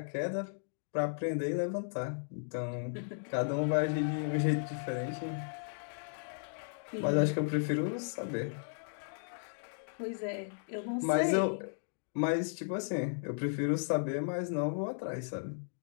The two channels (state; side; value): silent; right; digital silence